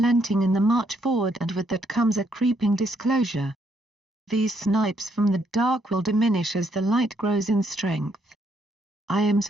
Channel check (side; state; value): both; normal; correlation 0.73